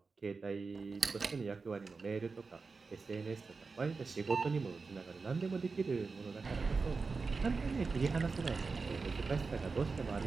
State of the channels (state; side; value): quieter; left; 4.4 dB